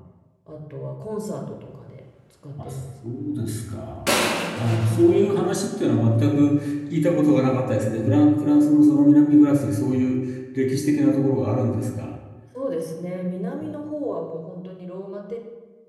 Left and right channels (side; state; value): both; identical; correlation 1.00